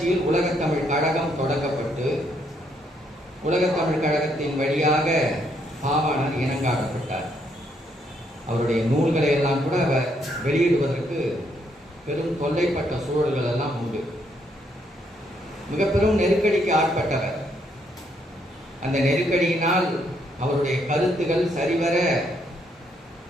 உலகத்தமிழ் கழகம் தொடங்கப்பட்டு உலகத்தமிழ் கழகத்தின் வழியாக பாவாணர் இனங்காணப்பட்டார். அவருடைய நூல்களை எல்லாம் கூட அவர் வெளியிடுவதற்கு பெரும் தொல்லைப்பட்ட சூழல்கள் எல்லாம் உண்டு. மிக பெரும் நெருக்கடிக்கு ஆட்பட்டவர். அந்த நெருக்கடியினால் அவருடைய கருத்துகள் சரிவர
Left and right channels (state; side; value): normal; both; correlation 0.73